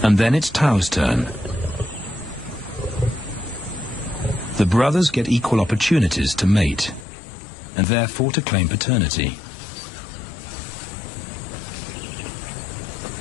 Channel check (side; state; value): right; drops out; at 7.1 s